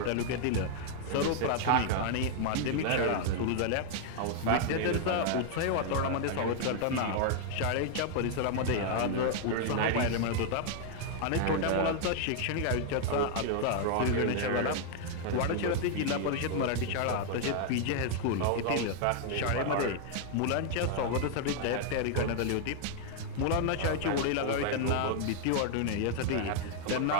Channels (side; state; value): both; different; correlation 0.00